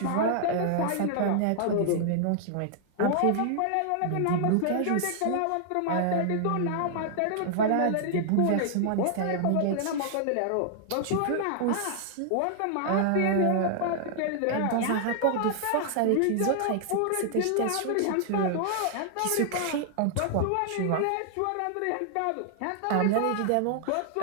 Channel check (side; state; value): both; different; correlation -0.01